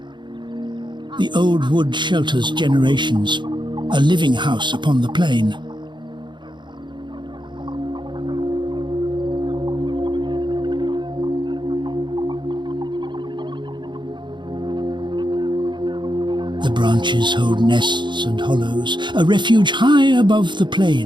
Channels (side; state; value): left; late; 0.22 ms